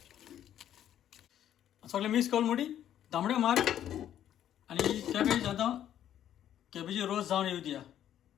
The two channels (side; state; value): right; quieter; 10.9 dB